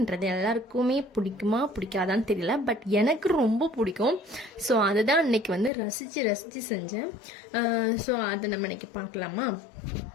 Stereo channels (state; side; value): drops out; right; at 5.7 s